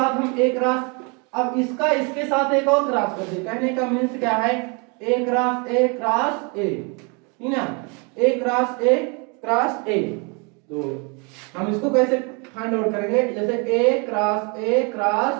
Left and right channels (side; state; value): left; quieter; 32.7 dB